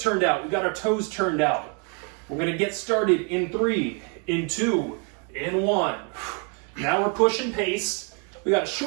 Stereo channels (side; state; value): left; quieter; 38.0 dB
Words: out. We've got our toes turned out. We're gonna get started in 3, in 2, in 1. Now we're pushing pace. We got a